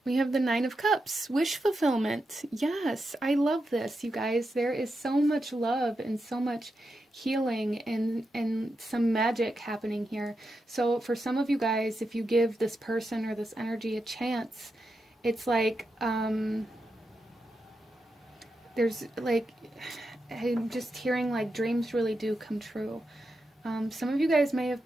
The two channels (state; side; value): normal; both; correlation 0.87